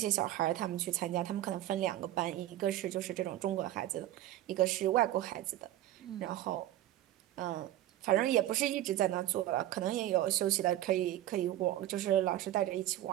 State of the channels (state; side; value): quieter; left; 13.8 dB